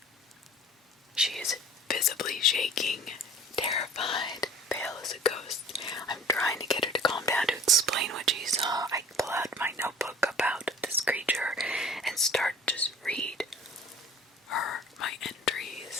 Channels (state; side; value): normal; both; correlation 0.46